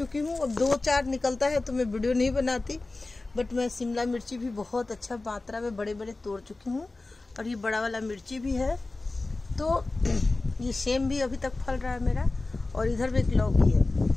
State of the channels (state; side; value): quieter; right; 3.2 dB